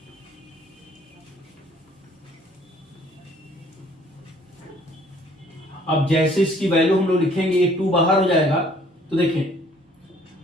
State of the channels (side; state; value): both; normal; correlation 0.58